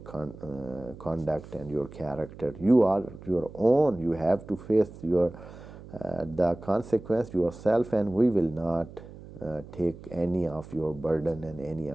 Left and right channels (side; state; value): right; noise; hum, 16 dB below the sound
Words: conduct and your character. You are your own, you have to face your the consequence yourself, and we will not take any of your burden and any